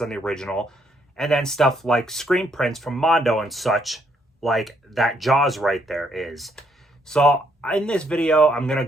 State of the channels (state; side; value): normal; both; correlation 0.71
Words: on the original. And then stuff like screen prints from Mondo and such, like that Jaws right there is. So in this video, I'm going to